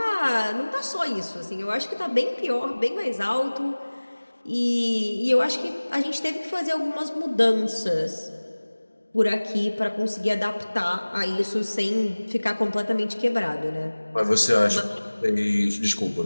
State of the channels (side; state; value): both; inverted; correlation -1.00